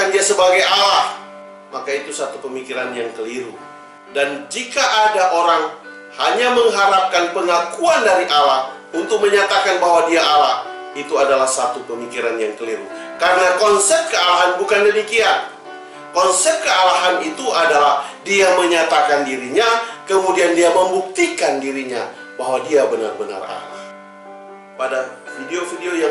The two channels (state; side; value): identical; both; correlation 1.00